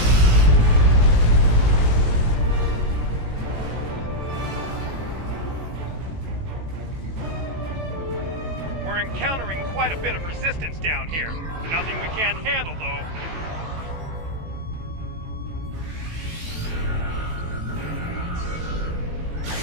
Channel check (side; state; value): left; late; 18 ms